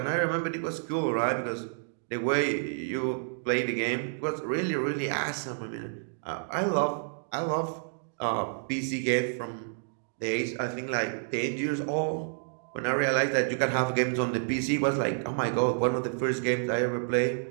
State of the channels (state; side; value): silent; left; digital silence